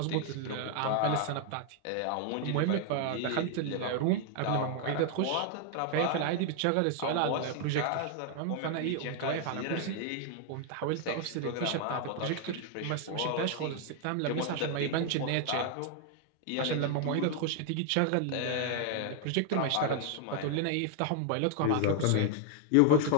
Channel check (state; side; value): different; both; correlation 0.00